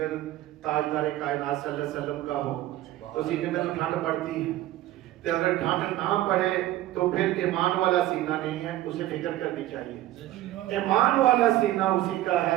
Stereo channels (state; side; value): quieter; left; 14.9 dB